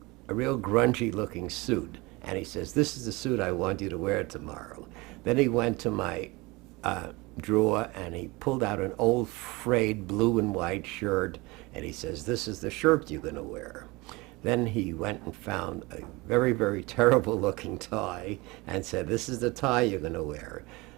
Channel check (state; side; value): quieter; left; 23.6 dB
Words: grungy-looking suit. And he says, this is the suit I want you to wear tomorrow. Then he went to my drawer and he pulled out an old frayed blue and white shirt, and he says, this is the shirt you're going to wear. Then he went and found a very terrible looking tie and said, this is the tie you're going to wear.